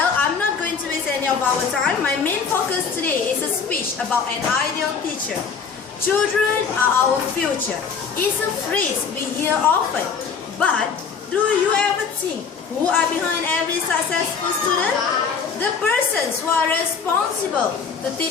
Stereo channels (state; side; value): quieter; right; 6.0 dB